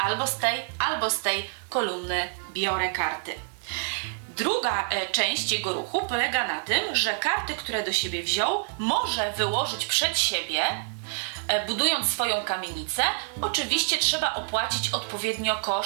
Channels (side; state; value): left; silent; digital silence